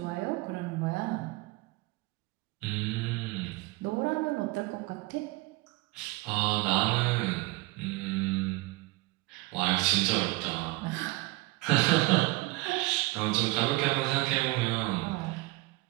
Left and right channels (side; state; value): left; quieter; 21.8 dB